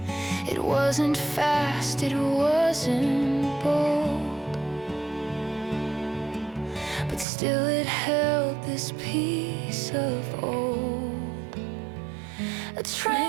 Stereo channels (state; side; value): drops out; left; at 7.2 s